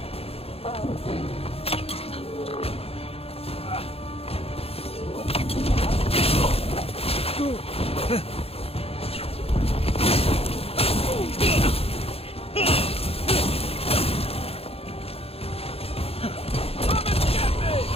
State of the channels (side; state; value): right; late; 0.28 ms